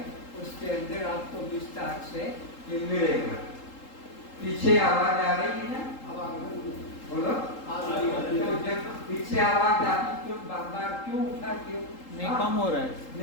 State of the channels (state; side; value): late; right; 3.8 ms